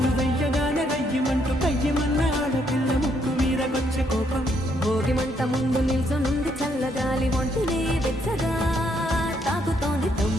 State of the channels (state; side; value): normal; both; correlation 0.73